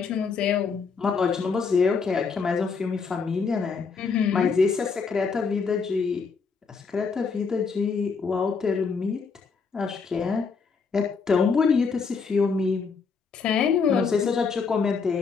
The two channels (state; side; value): quieter; right; 5.2 dB